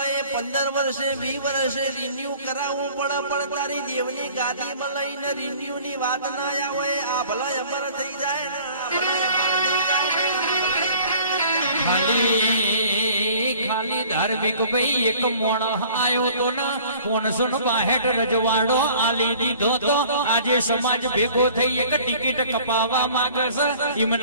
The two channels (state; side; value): inverted; both; correlation -0.50